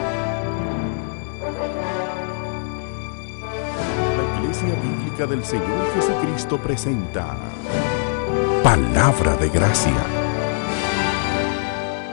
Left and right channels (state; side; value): silent; right; digital silence